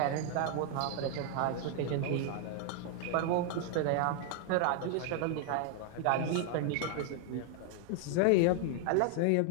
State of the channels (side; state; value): both; different; correlation 0.00